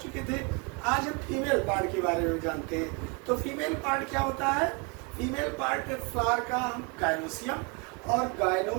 थे। आज हम फीमेल पार्ट के बारे में जानते हैं। तो फीमेल पार्ट क्या होता है? फीमेल पार्ट फ्लावर का गायनोसियम, और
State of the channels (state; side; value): quieter; left; 31.0 dB